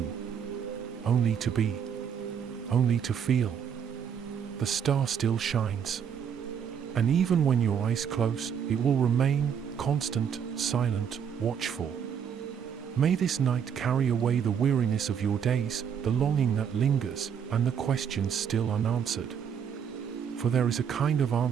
Only to be. Only to feel. The star still shines. And even when your eyes close, it will remain, constant, silent, watchful. May this night carry away the weariness of your days, the longing that lingers, and the questions still unanswered. For there is a kind of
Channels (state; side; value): quieter; left; 7.9 dB